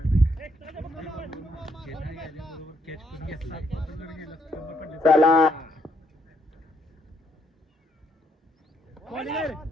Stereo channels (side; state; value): both; normal; correlation 0.72